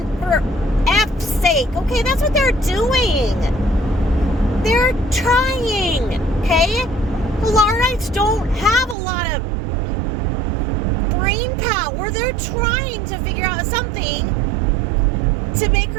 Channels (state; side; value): drops out; left; at 9.0 s